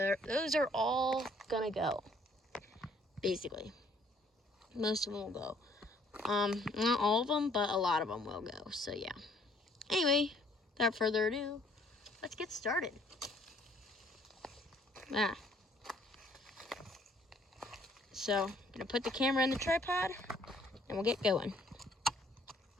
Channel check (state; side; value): normal; both; correlation 0.62